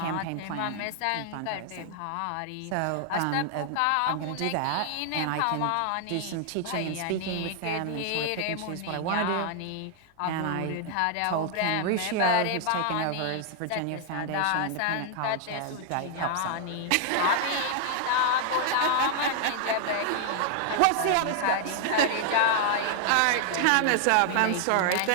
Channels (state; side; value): different; both; correlation 0.00